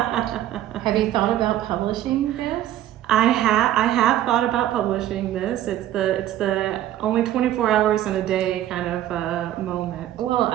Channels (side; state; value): left; quieter; 12.8 dB